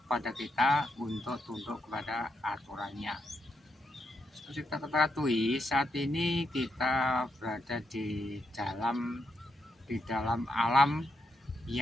kepada kita untuk tunduk kepada aturannya. Seperti kita ketahui, saat ini kita berada di dalam alam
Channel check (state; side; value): normal; both; correlation 0.81